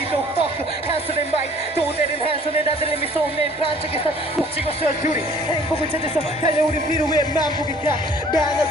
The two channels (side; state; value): both; normal; correlation 0.54